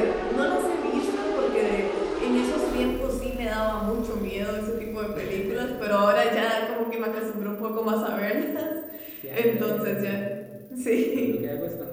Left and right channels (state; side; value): identical; both; correlation 1.00